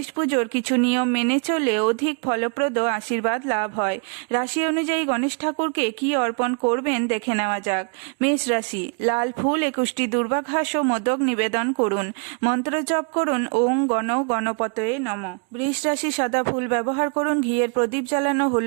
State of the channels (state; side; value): quieter; left; 39.3 dB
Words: পুজোর কিছু নিয়ম মেনে চললে অধিক ফলপ্রদ আশীর্বাদ লাভ হয়। রাশি অনুযায়ী গণেশ ঠাকুরকে কি অর্পণ করবেন দেখে নেওয়া যাক। মেষ রাশি, লাল ফুল 21টি দুর্বাঘাস ও মোদক নিবেদন করুন। মন্ত্র জপ করুন ওং গণ গণপতয়ে নমঃ। বৃষ রাশি, সাদা ফুল ব্যবহার করুন। ঘিয়ের প্রদীপ জ্বালানো,